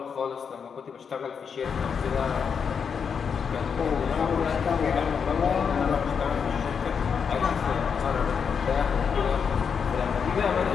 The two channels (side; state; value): right; quieter; 6.5 dB